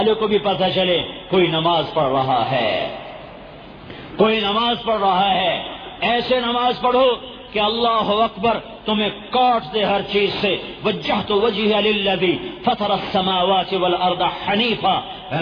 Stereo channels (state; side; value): identical; both; correlation 1.00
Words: کو بھی پتہ چلے کوئی نماز پڑھ رہا ہے، کوئی نماز پڑھ رہا ہے۔ ایسے نماز پڑھو کہ اللہ اکبر تمہیں کاٹ دے ہر چیز سے۔ وجہت وجہی للذی فطر السماوات والارض حنیفا